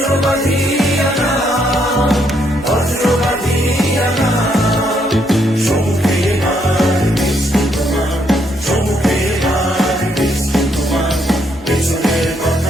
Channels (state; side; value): normal; both; correlation 0.74